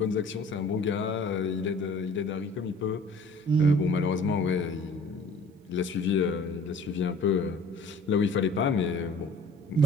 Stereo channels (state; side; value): normal; both; correlation 0.50